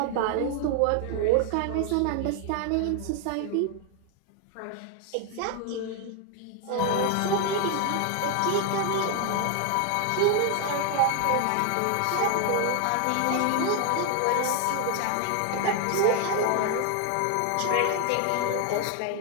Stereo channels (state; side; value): different; both; correlation 0.00